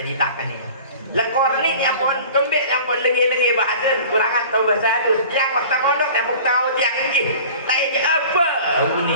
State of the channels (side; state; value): both; inverted; correlation -0.42